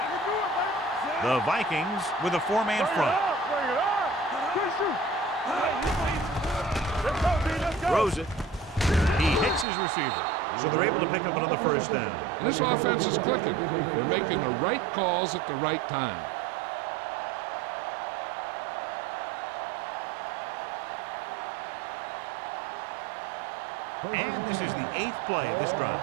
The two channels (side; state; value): left; drops out; at 9.7 s